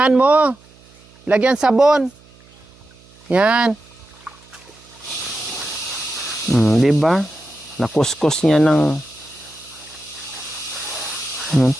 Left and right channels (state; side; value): noise; right; hum, 27 dB below the sound